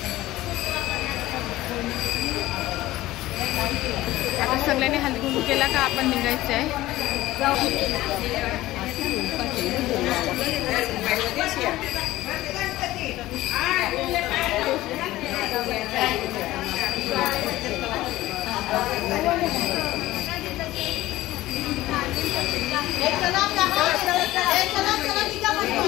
आता सगळ्यांनी हळदी कुंकू केला का आपण निघायचं आहे।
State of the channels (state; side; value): quieter; right; 16.6 dB